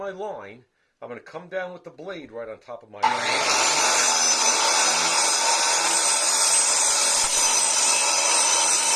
line. I'm going to come down with the blade right on top of my line.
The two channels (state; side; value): identical; both; correlation 1.00